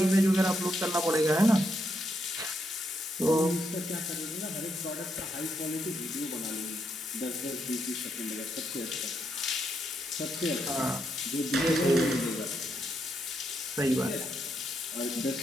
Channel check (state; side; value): normal; both; correlation 0.79